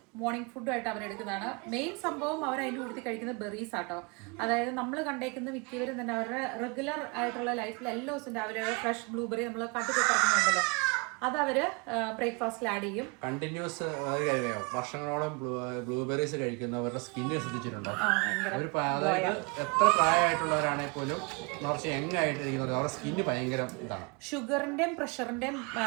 മോർണിംഗ് ഫുഡും ആയിട്ട് അവരെടുക്കുന്നതാണ്. മെയിൻ സംഭവം അവർ അതിൻ്റെ കൂടുതൽ കഴിക്കുന്ന ബെറീസ് ആട്ടോ. അതായത് നമ്മൾ കണ്ടേക്കുന്ന മിക്കവരും തന്നെ അവരുടെ റെഗുലർ ആയിട്ടുള്ള ലൈഫിൽ എല്ലാ ദിവസവും രാവിലെ ഫ്രഷ് ബ്ലൂബെറി നമ്മൾ കട്ടിക്കിറക്കുന്നുണ്ടല്ലോ, അത് അവര് ബ്രേക്ക്ഫാസ്റ്റിൽ ആഡ് ചെയ്യും. കണ്ടിന്യൂസ് വർഷങ്ങളോളം ബ്ലൂബെറീസ് കഴിക്കുന്നവരുടെ സ്കിന്നിനെ ശ്രദ്ധിച്ചിട്ടുണ്ടോ? അതായത് എത്ര പ്രായമായിട്ടുള്ളവരാണെങ്കിൽ പോലും കുറച്ച് യങ് ആയിട്ട് ഇരിക്കുന്നത് അവരുടെ സ്കിന്ന് ഭയങ്കര ഇതാണ്. ഷുഗറിന്റെയും പ്രഷറിന്റെയും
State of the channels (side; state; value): left; quieter; 30.9 dB